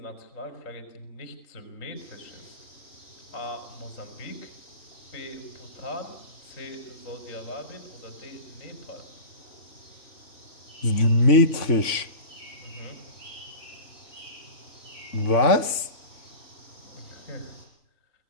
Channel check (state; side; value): late; right; 3.5 ms